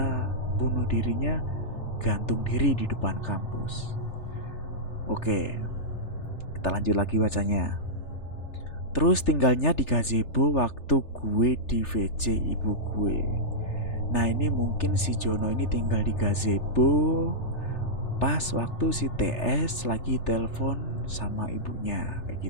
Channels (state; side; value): late; right; 3.4 ms